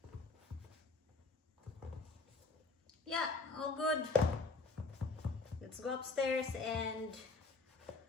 Yeah, all good. Let's go upstairs and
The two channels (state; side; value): quieter; right; 3.8 dB